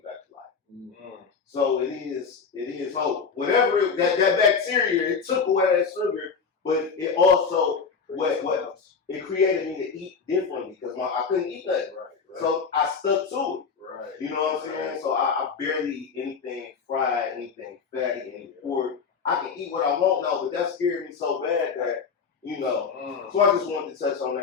back to life. So it is hope. Whatever that bacteria, it took away that sugar, but it also what it created me to eat differently because I couldn't eat nothing. So I stuck to it. You know what I'm saying? So I barely eat anything fried, anything fatty, any pork. I can eat what I want now, but that scared me so bad that, you know. So I just wanted to touch on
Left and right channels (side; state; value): right; quieter; 5.6 dB